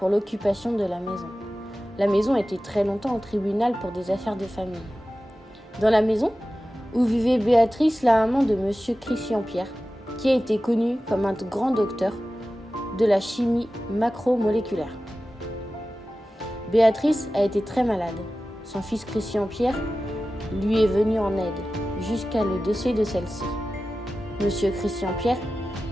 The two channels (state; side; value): normal; both; correlation 0.95